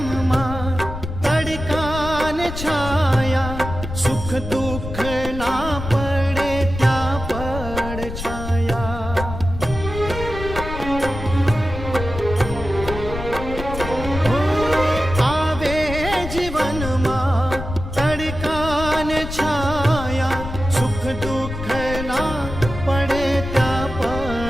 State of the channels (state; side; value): noise; left; rumble, 8 dB below the sound